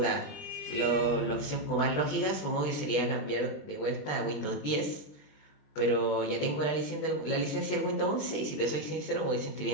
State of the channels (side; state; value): right; late; 20 ms